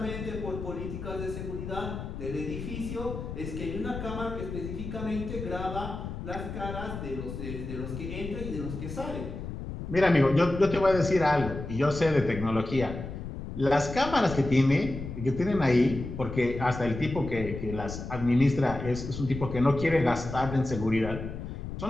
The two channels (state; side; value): noise; left; rumble, 8 dB below the sound